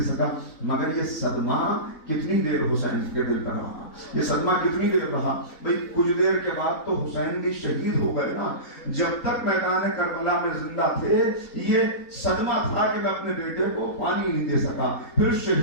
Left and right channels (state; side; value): late; right; 3.9 ms